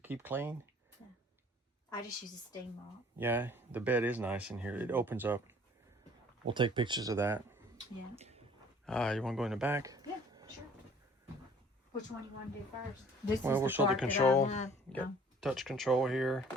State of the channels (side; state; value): both; normal; correlation 0.53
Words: keep clean. I just use a steam mop. Yeah, the bed is nice in here. It opens up. We'll take pictures of that. Yeah. You want to go in the back? Yeah, sure. Which one you want to do first? This Well, is we'll the show the part that I control. love. You got touch control here.